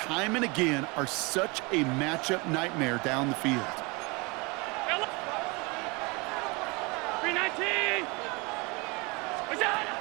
and again, are such a matchup nightmare down the field. 319. What's that?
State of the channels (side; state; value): left; quieter; 27.6 dB